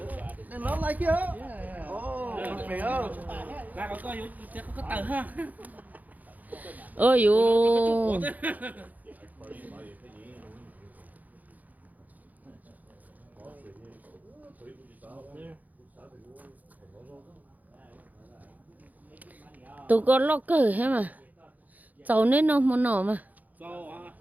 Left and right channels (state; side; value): late; left; 0.080 ms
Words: And not like you. Oh, okay. Lại có tờ ha. Ôi dồi. Tụi con lo cờ hết mà. Cháu nên nó muốn nổ mà.